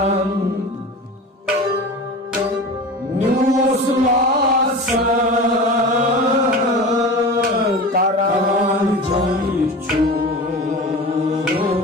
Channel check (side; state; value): both; normal; correlation 0.33